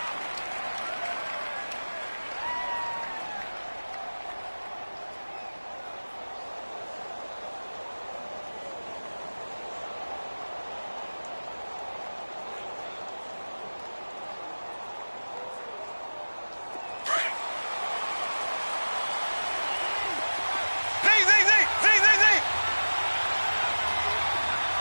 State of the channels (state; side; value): inverted; both; correlation -1.00